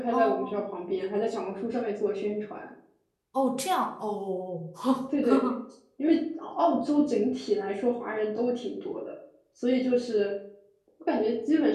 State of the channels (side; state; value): both; identical; correlation 1.00